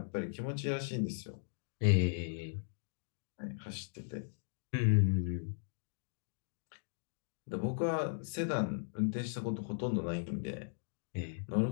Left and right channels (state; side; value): silent; right; digital silence